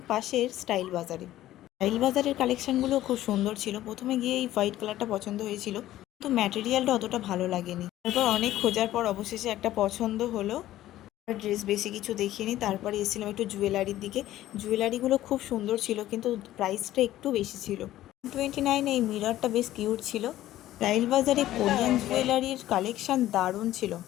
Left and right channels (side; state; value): right; quieter; 14.2 dB